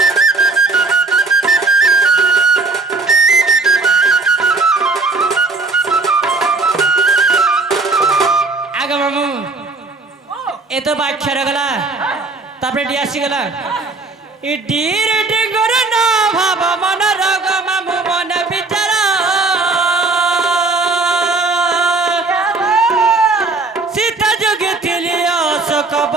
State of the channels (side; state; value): left; quieter; 3.5 dB